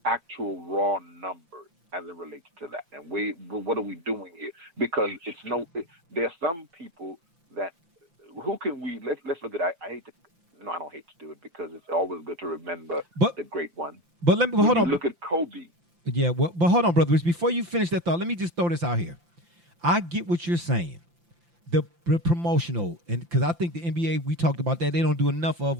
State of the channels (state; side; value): late; left; 5.8 ms